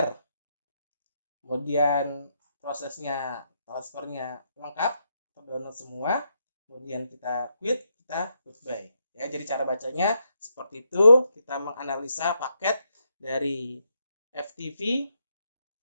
Kemudian prosesnya transfernya lengkap, terdownload semua. Kemudian kita quit, kita goodbye. Ya, jadi cara bacanya seperti itu. Kita menganalisa paket dari FTP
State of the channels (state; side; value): inverted; both; correlation -0.79